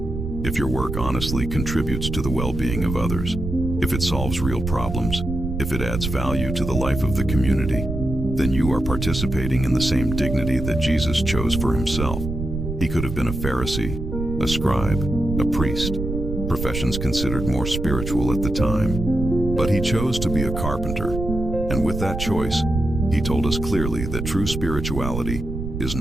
If your work honestly contributes to the well-being of others, if it solves real problems, if it adds value to the life of the community, then you are participating in the same dignity that Jesus chose for himself. He could have been a Pharisee, a scribe, a priest, professions considered more spiritual at the time. But he chose to be a carpenter, and with that choice, he told us clearly that true spirituality is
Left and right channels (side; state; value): right; noise; rumble, 5 dB below the sound